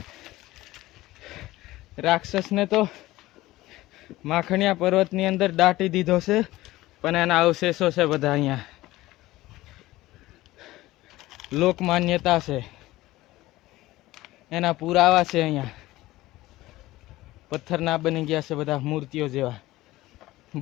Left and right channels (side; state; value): right; quieter; 17.6 dB